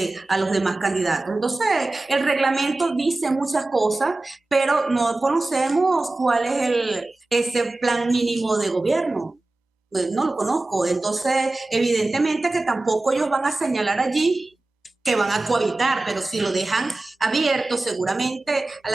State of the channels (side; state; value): left; quieter; 3.0 dB